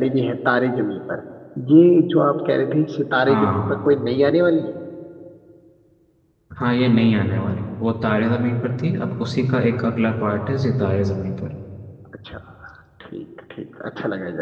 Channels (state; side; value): identical; both; correlation 1.00